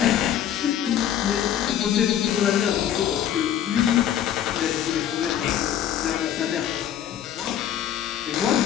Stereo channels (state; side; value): quieter; right; 10.4 dB